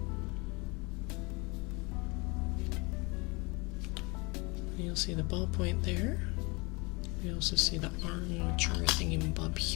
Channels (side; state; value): right; quieter; 27.4 dB